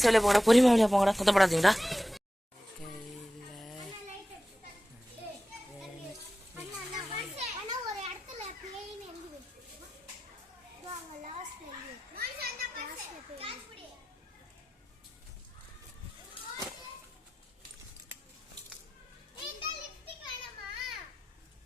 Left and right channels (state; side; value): normal; both; correlation 0.93